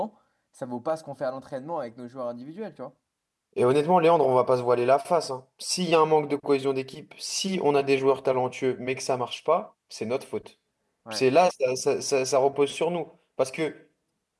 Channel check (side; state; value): both; identical; correlation 1.00